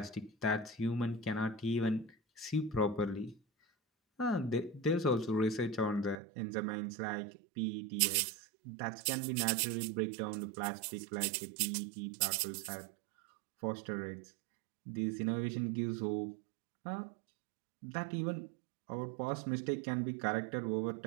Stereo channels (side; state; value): left; drops out; at 6.2 s